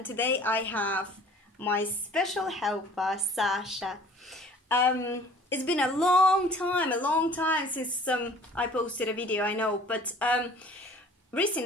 today I have my special helper, Sasha. It's been a long time since I posted a video, I know, but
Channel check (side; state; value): both; normal; correlation 0.50